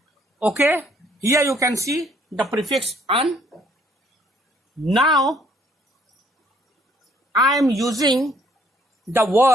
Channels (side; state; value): both; normal; correlation 0.64